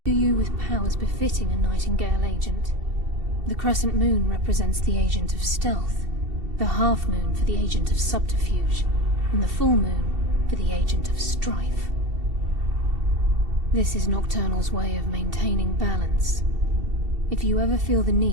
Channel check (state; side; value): late; left; 2.7 ms